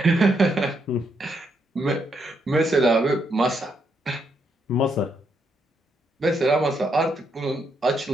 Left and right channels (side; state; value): both; normal; correlation 0.78